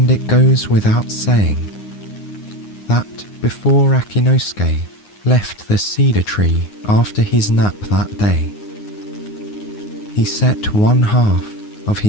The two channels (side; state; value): right; late; 9.6 ms